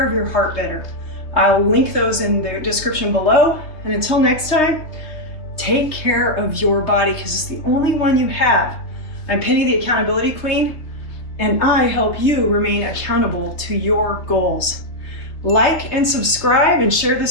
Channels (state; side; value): late; right; 3.3 ms